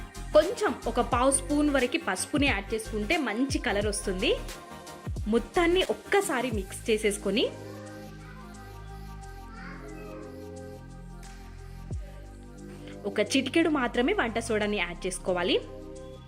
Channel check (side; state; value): both; identical; correlation 1.00